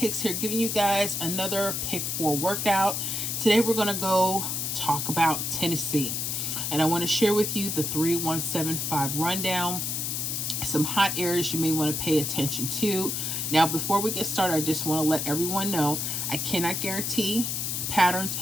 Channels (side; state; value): left; noise; hiss, 1 dB below the sound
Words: here, giving you guys another pick 4 workout. Today we're going to go talk about Tennessee, and I want to share with you the 3175 rundown, some hot areas you may want to pay attention to. Now before we get started, I just want to let everyone know I cannot guarantee patterns,